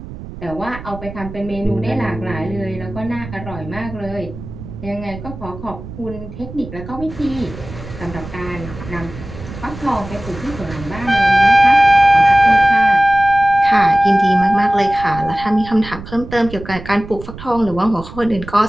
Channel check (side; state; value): right; noise; rumble, 13 dB below the sound